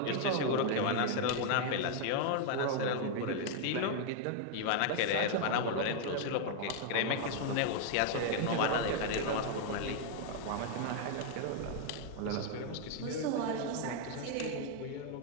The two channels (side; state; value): both; different; correlation 0.00